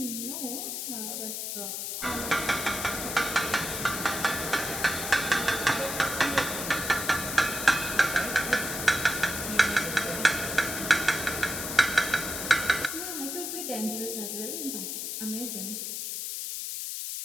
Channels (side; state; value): left; noise; hiss, 4 dB below the sound